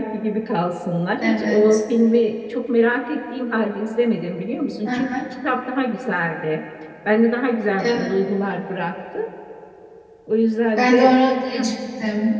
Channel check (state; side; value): identical; both; correlation 1.00